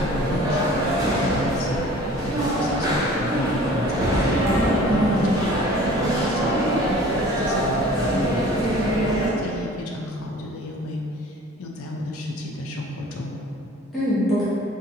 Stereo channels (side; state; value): both; normal; correlation 0.47